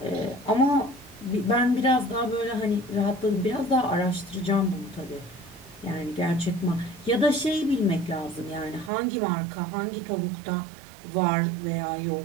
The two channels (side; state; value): left; drops out; at 8.9 s